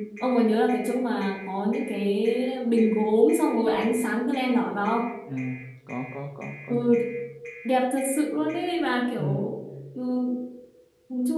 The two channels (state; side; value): identical; both; correlation 1.00